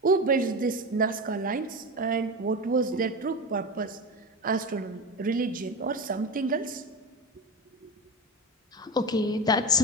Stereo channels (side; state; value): both; normal; correlation 0.22